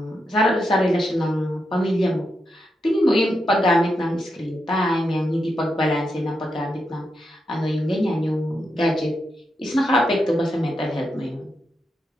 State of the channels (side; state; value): both; normal; correlation 0.85